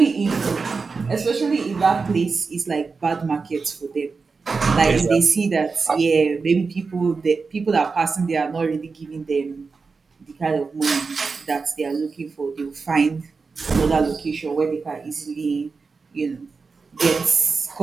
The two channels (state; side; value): quieter; left; 4.6 dB